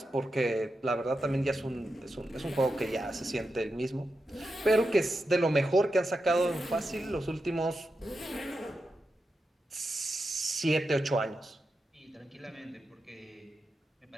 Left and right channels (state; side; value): normal; both; correlation 0.88